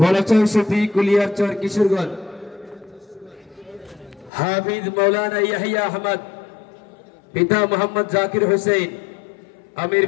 সুফি কুলিয়ারচর কিশোরগঞ্জ হাফিজ মৌলানা ইয়াহিয়া আহমদ পিতা মোহাম্মদ জাকির হোসেন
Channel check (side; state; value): right; drops out; at 4.3 s